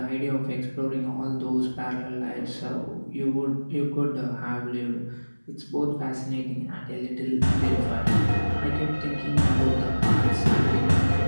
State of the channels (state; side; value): inverted; both; correlation -1.00